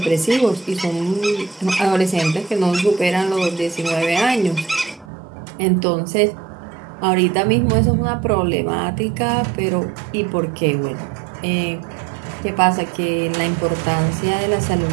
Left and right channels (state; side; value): drops out; left; at 5.1 s